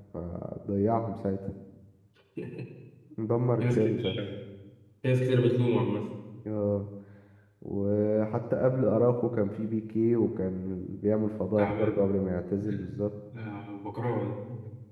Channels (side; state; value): both; identical; correlation 1.00